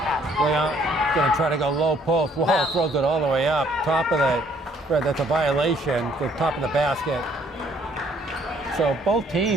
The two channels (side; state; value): both; normal; correlation 0.64